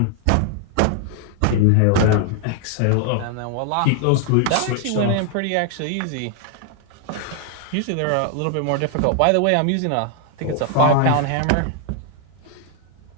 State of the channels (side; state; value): both; different; correlation 0.00